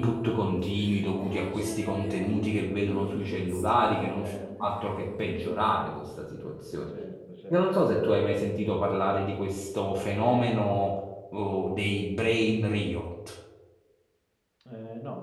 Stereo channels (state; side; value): identical; both; correlation 1.00